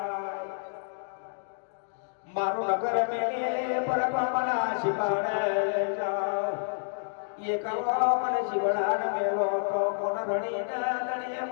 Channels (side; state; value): right; silent; digital silence